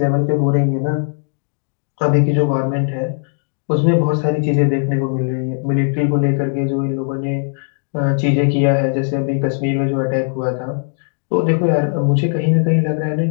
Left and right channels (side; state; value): right; silent; digital silence